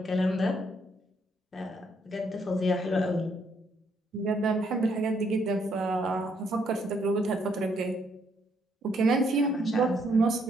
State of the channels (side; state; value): both; normal; correlation 0.72